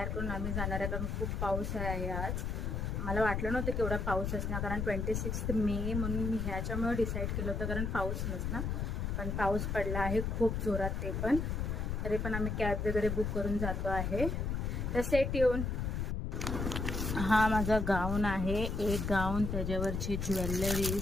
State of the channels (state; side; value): noise; left; rumble, 1 dB below the sound